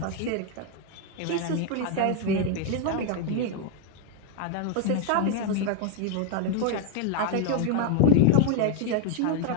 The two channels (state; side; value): different; both; correlation 0.01